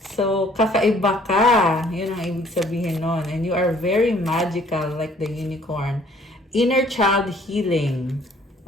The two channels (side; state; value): both; normal; correlation 0.59